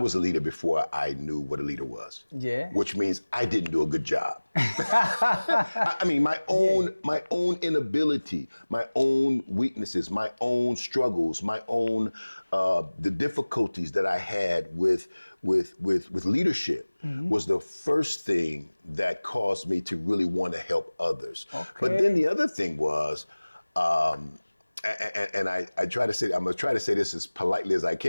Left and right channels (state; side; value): inverted; both; correlation -1.00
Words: a leader before I knew what a leader was. Yeah. Which means I didn't do a good job. I mean, my own inability, my own weaknesses, my own struggles, my own the difficulties that I had with leadership was the first thing that caused me to really want to help others. Okay. But then the other thing was, and I try to say, I'm gonna try to say this as politely as I